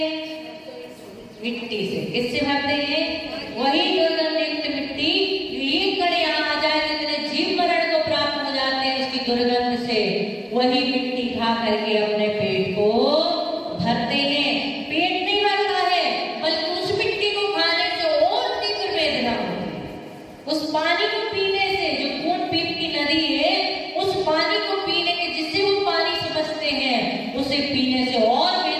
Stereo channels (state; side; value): identical; both; correlation 1.00